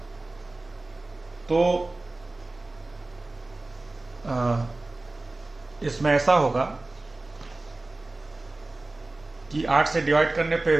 तो इसमें ऐसा होगा कि 8 से डिवाइड करने पे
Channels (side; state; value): left; quieter; 3.0 dB